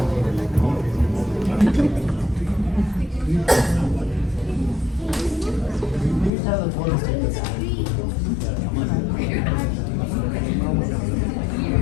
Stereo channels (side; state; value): right; drops out; at 6.3 s